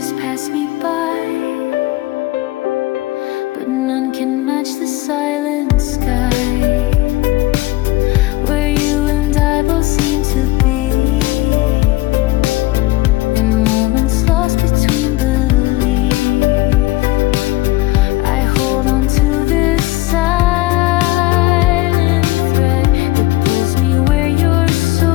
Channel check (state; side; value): quieter; right; 18.7 dB